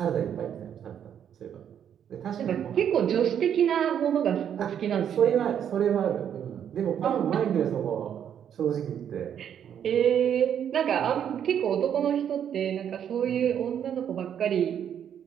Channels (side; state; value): left; quieter; 9.0 dB